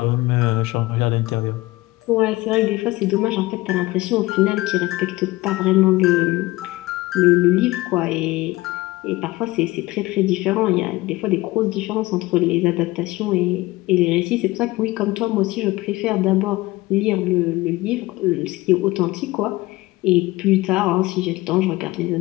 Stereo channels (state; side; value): quieter; right; 19.7 dB